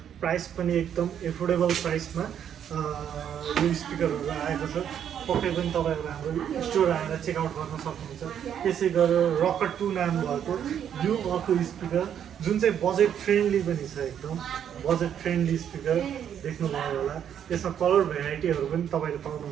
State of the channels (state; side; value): quieter; left; 9.1 dB